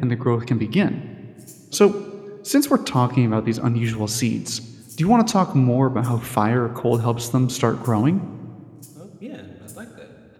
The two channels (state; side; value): identical; both; correlation 1.00